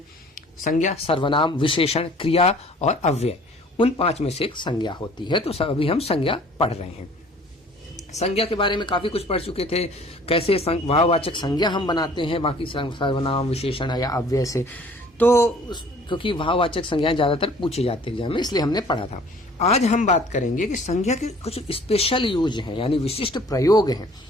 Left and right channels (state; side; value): normal; both; correlation 0.52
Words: संज्ञा, सर्वनाम, विशेषण, क्रिया और अव्यय। उन 5 में से एक संज्ञा होती है। तो अभी हम संज्ञा पढ़ रहे हैं। संज्ञा के बारे में काफी कुछ पढ़ चुके थे, कैसे भाववाचक संज्ञा हम बनाते हैं बाकी सर्वनाम, विशेषण या अव्यय से। तो क्योंकि भाववाचक संज्ञाएं ज्यादातर पूछी जाती है एग्जाम में, इसलिए हमने पढ़ा था। आज हम बात करेंगे कि संज्ञा के कुछ स्पेशल यूज हैं, यानी विशिष्ट प्रयोग हैं